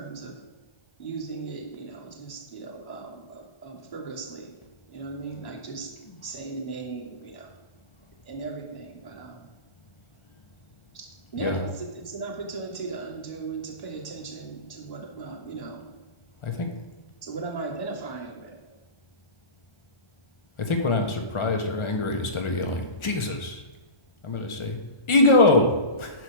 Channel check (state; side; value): late; right; 1.4 ms